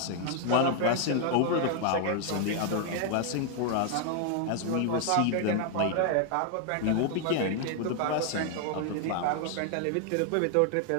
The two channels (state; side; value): different; both; correlation 0.00